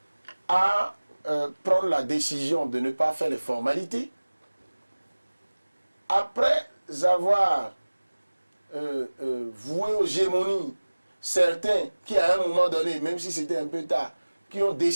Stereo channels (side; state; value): both; inverted; correlation -1.00